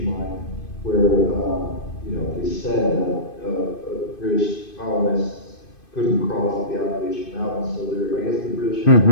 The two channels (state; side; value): late; right; 2.5 ms